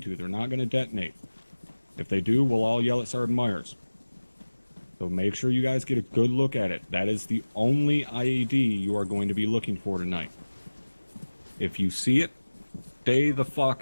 to. They're not going to detonate. If they do, we'll all yell at Sergeant Myers. So make sure you guys get a good look at it. That is the only IED you are going to be looking for tonight. If you see it, stay the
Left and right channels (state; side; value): inverted; both; correlation -1.00